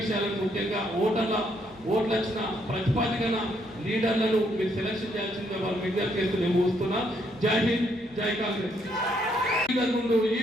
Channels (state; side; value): noise; left; hum, 28 dB below the sound